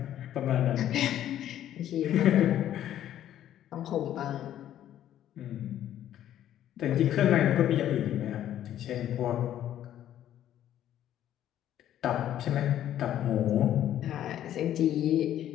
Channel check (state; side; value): quieter; right; 11.5 dB